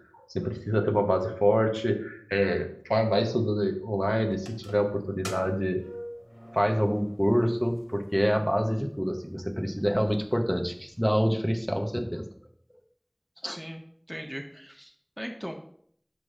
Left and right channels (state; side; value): identical; both; correlation 1.00